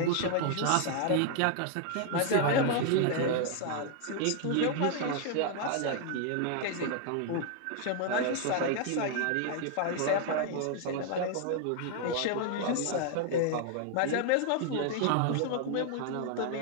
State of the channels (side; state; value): both; different; correlation 0.00